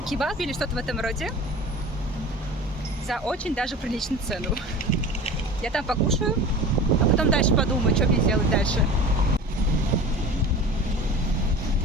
или что-то в этом роде за очень даже приличную цену. Я там покушаю, а потом дальше подумаю, что мне делать дальше.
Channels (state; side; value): normal; both; correlation 0.37